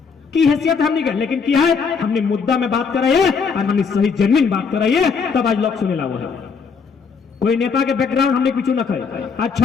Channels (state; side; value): quieter; right; 5.6 dB